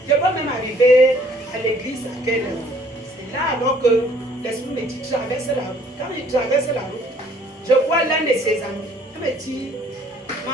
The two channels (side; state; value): both; normal; correlation 0.59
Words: Je peux même arriver à l'église à quelle heure? C'est là alors que l'esprit me dit, traverse la route. Quand il traverse la route, je vois l'un de ses amis. Il me dit,